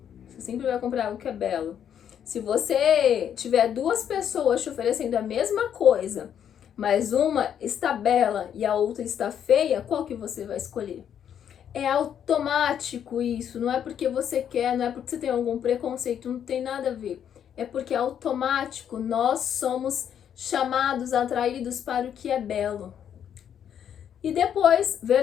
você sempre vai comprar algo que é belo. Se você tiver duas pessoas te oferecendo a mesma coisa, mas uma está bela e a outra está feia, qual que você vai escolher? É automático isso, não é porque você quer, não é porque você tem algum preconceito, não tem nada a ver. É porque é automático, nós somos chamados, atraídos para o que é belo. E depois,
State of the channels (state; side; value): quieter; right; 9.0 dB